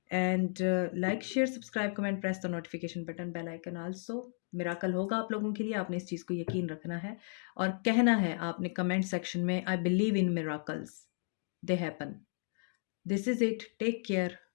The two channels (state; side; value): silent; right; digital silence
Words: and like, share, subscribe, comment, press the notification button, bell icon also. Miracle होगा आप लोगों के लिए, आपने इस चीज़ को यकीन रखना है और कहना है आपने कमेंट सेक्शन में, I believe in miracles, they happen. This is it, take care,